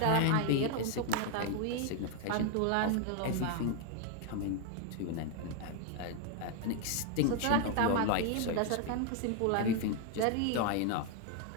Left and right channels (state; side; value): different; both; correlation 0.01